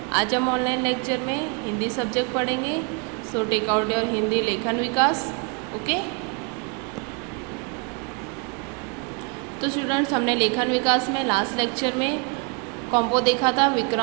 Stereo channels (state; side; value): quieter; left; 32.6 dB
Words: आज हम ऑनलाइन लेक्चर में हिंदी सब्जेक्ट पढ़ेंगे। So take out your Hindi Lekhan Vikas. Okay, तो स्टूडेंट्स, हमने लेखन विकास में लास्ट लेक्चर में कॉम्पो देखा था,